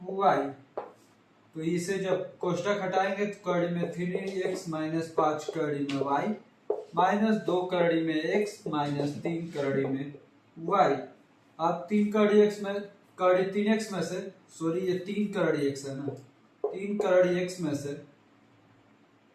y। तो इसे जब कोष्टक हटाएंगे तो कड़ी में 3x माइनस 5 कड़ी में y माइनस 2 कड़ी में x माइनस 3 कड़ी में y। अब 3 कड़ी x में कड़ी 3x में से सॉरी ये 3 कड़ी x है ना, 3 कड़ी x में से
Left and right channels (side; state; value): both; identical; correlation 1.00